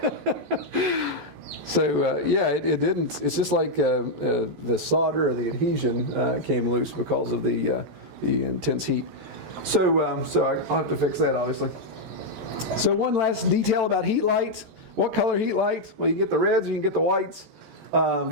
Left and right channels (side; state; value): left; late; 14 ms